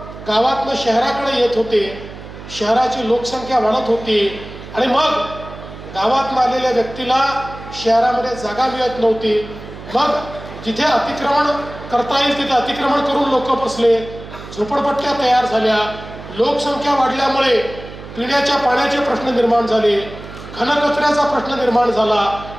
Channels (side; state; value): right; noise; hum, 14 dB below the sound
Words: गावातनं शहराकडे येत होते, शहराची लोकसंख्या वाढत होती आणि मग गावातून आलेल्या व्यक्तीला शहरामध्ये जागा मिळत नव्हती। मग जिथे अतिक्रमण करता येईल तिथे अतिक्रमण करून लोक बसले, झोपडपट्ट्या तयार झाल्या, लोकसंख्या वाढल्यामुळे पिण्याच्या पाण्याचे प्रश्न निर्माण झाले, घनकचऱ्याचा प्रश्न निर्माण झाला,